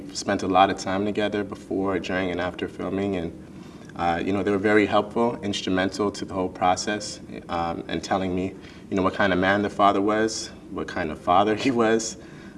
spent a lot of time together before, during, and after filming, and they were very helpful, instrumental to the whole process, and telling me, what kind of man the father was, what kind of father he was.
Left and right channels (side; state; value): both; identical; correlation 1.00